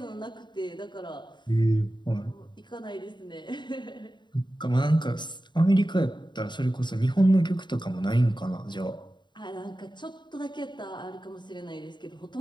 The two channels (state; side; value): late; right; 0.22 ms